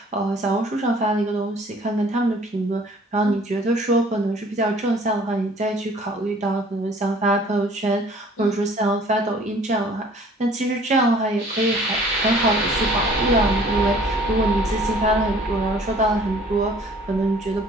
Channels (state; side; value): normal; both; correlation 0.53